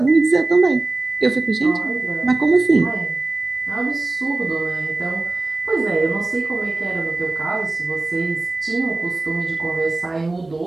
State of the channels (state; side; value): quieter; left; 3.1 dB